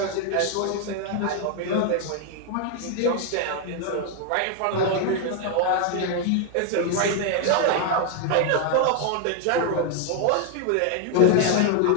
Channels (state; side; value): different; both; correlation 0.00